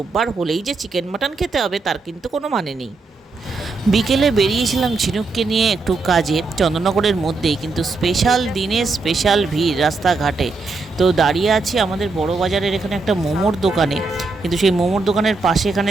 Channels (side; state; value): left; quieter; 3.8 dB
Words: হলেই যে চিকেন মাটন খেতে হবে তার কিন্তু কোনো মানে নেই। বিকেলে বেরিয়েছিলাম ঝিনুককে নিয়ে একটু কাজে, চন্দননগরের মধ্যেই, কিন্তু স্পেশাল দিনে স্পেশাল ভিড় রাস্তাঘাটে। তো দাঁড়িয়ে আছি আমাদের বড় বাজারের এখানে একটা মোমোর দোকানে, কিন্তু সেই মোমোর দোকানের পাশে